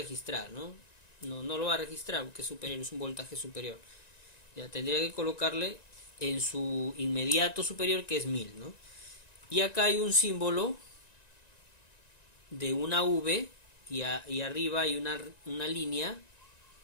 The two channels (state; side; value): late; right; 1.9 ms